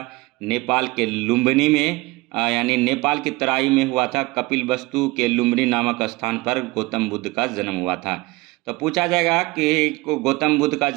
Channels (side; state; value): left; quieter; 22.5 dB